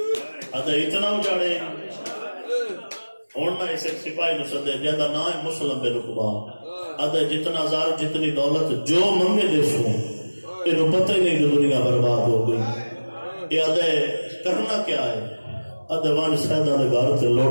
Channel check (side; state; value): both; inverted; correlation -1.00